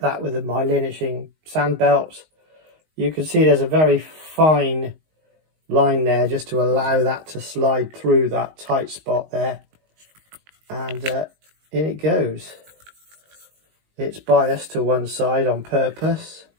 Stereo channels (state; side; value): late; left; 19 ms